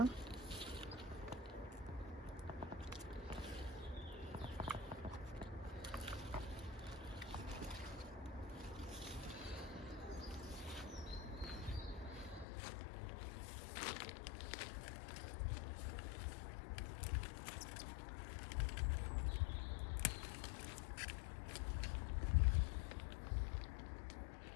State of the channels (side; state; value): right; drops out; at 12.5 s